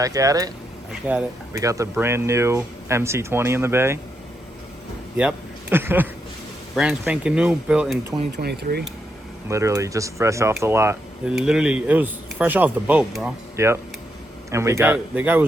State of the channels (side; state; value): both; normal; correlation 0.81